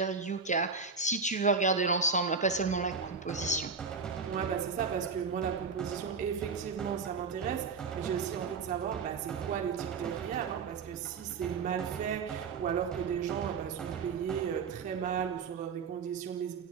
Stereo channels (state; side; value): quieter; left; 5.2 dB